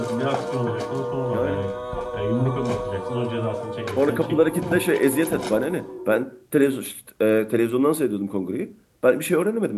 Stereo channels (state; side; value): identical; both; correlation 1.00